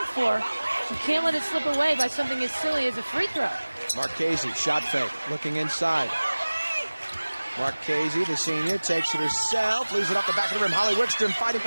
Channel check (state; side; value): inverted; both; correlation -1.00